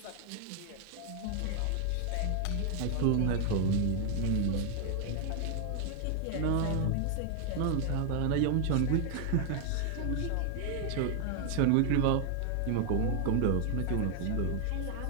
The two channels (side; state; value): both; different; correlation 0.00